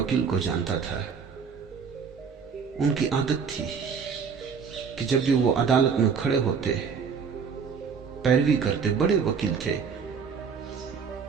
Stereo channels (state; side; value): quieter; left; 6.1 dB